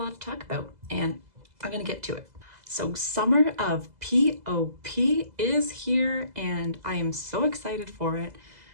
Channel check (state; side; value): late; left; 2.0 ms